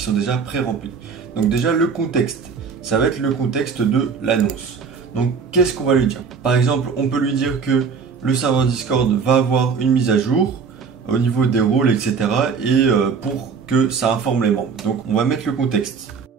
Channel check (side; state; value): left; quieter; 5.7 dB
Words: déjà pré-remplis. Donc déjà le contexte, ça va être le contexte de l'annonce. Donc qu'est-ce qu'on va lui dire? Par exemple, on peut lui dire que le serveur Discord va avoir une mise à jour au niveau des rôles, etc. Et pour que ça informe les membres. Donc on va mettre le contexte.